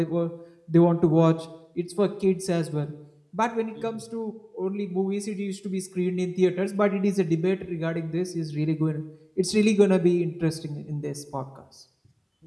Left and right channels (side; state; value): both; identical; correlation 1.00